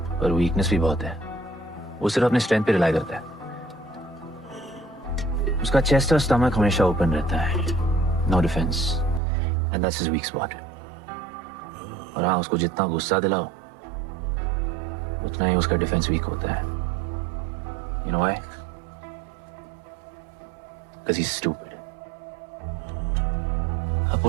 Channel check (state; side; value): drops out; left; at 9.2 s